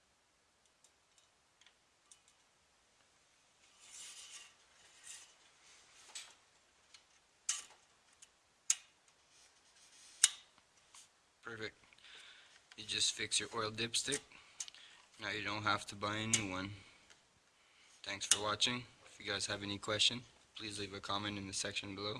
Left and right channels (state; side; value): identical; both; correlation 1.00